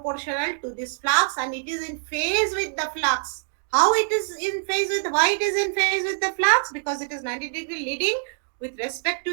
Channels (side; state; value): left; silent; digital silence